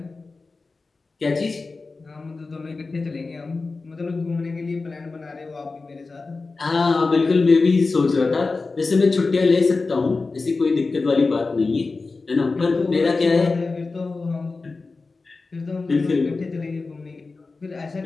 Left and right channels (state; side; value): quieter; right; 3.9 dB